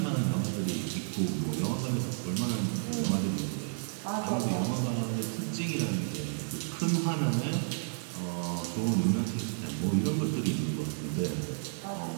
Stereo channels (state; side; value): silent; left; digital silence